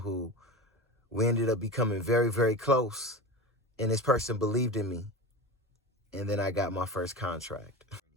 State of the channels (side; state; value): both; normal; correlation 0.28